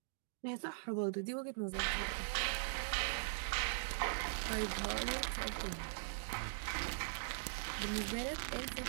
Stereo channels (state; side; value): silent; left; digital silence